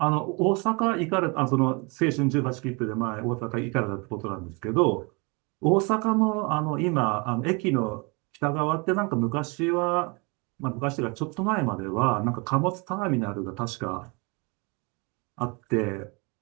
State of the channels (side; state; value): left; quieter; 30.0 dB